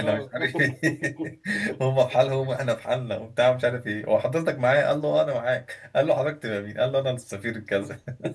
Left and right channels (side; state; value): both; identical; correlation 1.00